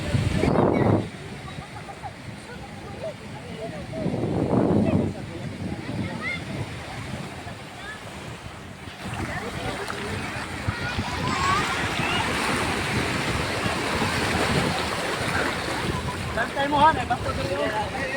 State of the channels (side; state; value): both; identical; correlation 1.00